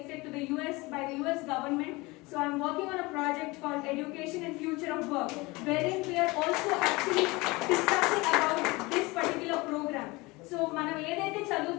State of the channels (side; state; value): right; quieter; 23.4 dB